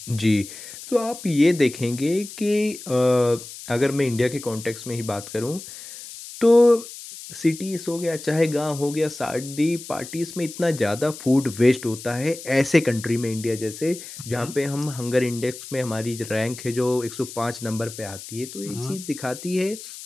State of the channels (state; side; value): noise; left; hiss, 13 dB below the sound